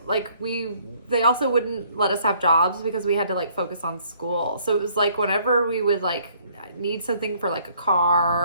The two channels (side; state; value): both; inverted; correlation -0.62